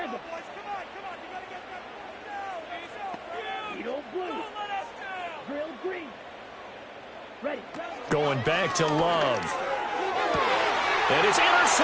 Going back to Love. And it's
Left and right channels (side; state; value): both; identical; correlation 1.00